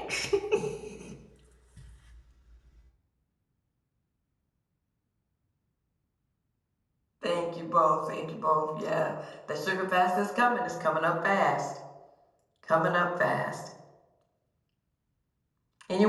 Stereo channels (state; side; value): identical; both; correlation 1.00